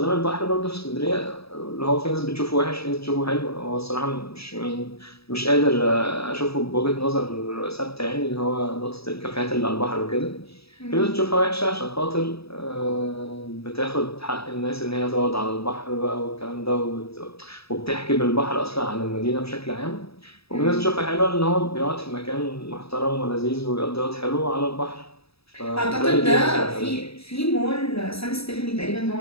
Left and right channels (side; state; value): right; late; 0.77 ms